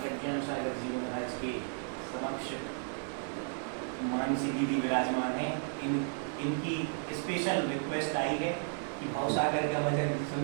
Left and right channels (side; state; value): left; silent; 55 dB below the other